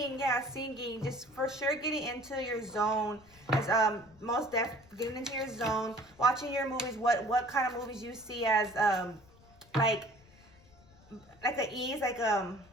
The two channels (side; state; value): left; noise; rumble, 26 dB below the sound